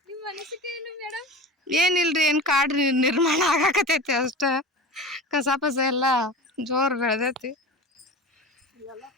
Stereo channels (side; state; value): both; normal; correlation 0.32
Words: ನಿಮ್ಮ ಅನಿಸಿಕೆ ಏನು ಮೇಡಮ್? ಏನಿಲ್ರಿ, ಏನ್ ಕಾಡು ನಿರ್ಮಾಣ ಆಗಾಕತೈತಿ ಅಷ್ಟ. ಕಸ ಪಸ ಎಲ್ಲ ಜೋರ್ ಬೆಳೆದೈತಿ.